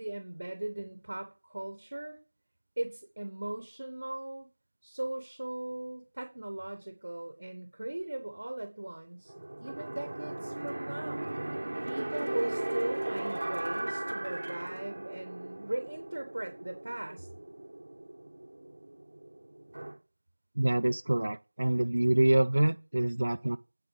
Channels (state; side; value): inverted; both; correlation -1.00